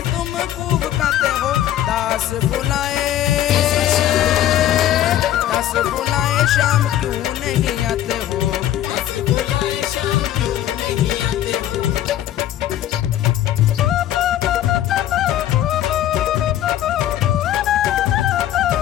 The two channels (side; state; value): right; quieter; 12.2 dB